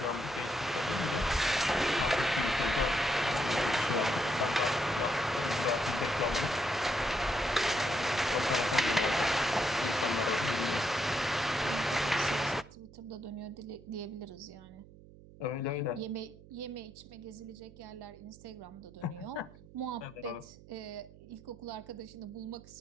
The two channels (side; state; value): right; noise; hum, 20 dB below the sound